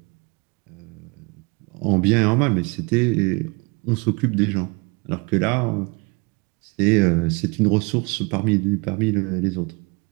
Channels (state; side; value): quieter; left; 29.3 dB